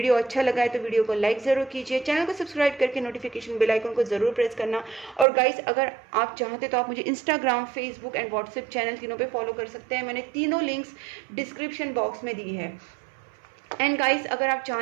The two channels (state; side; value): drops out; left; at 5.2 s